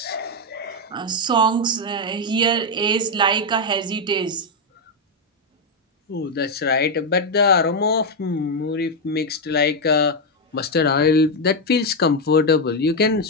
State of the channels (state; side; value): normal; both; correlation 0.03